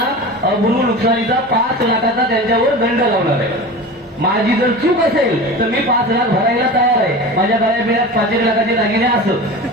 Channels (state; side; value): normal; both; correlation 0.32